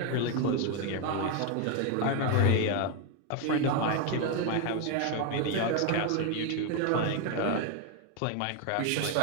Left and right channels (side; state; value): both; different; correlation 0.01